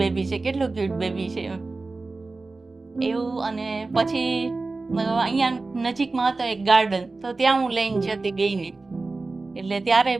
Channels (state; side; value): quieter; left; 3.6 dB